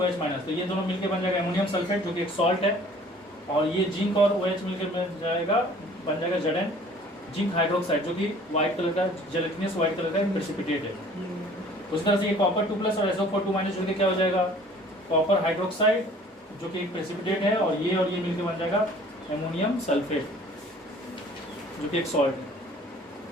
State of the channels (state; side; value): normal; both; correlation 0.52